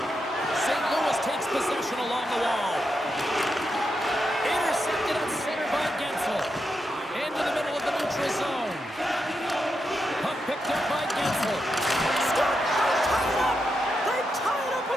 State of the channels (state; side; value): normal; both; correlation 0.85